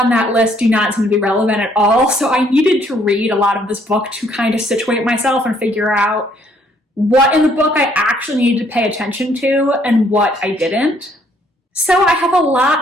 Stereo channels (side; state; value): both; normal; correlation 0.66